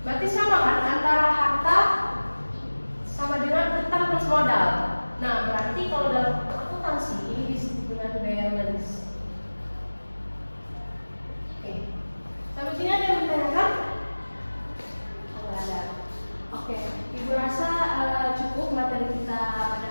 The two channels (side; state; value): both; inverted; correlation -1.00